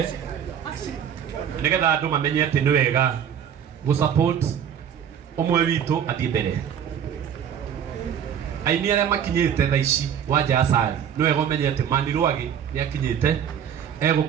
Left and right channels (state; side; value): quieter; left; 8.7 dB